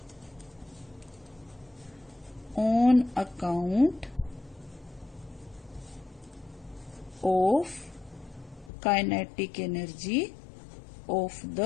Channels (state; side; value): drops out; right; at 8.7 s